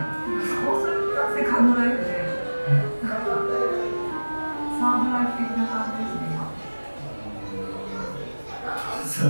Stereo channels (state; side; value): inverted; both; correlation -1.00